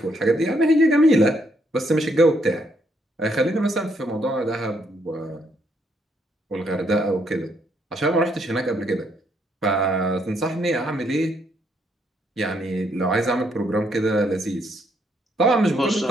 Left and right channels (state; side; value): normal; both; correlation 0.73